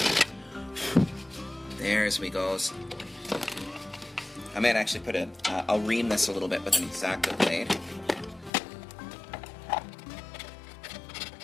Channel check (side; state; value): right; drops out; at 8.5 s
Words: There's we goes. I might actually put I'll ream this a little bit with an X-Acto blade.